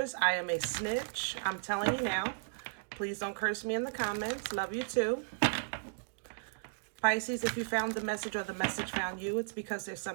I am a snitch. I'm telling you now. Please don't curse me in the comments. Love you too. Pisces, if you found the message or the message found you, it's because there's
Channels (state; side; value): silent; left; digital silence